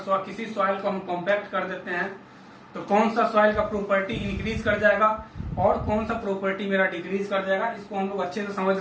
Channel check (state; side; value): identical; both; correlation 1.00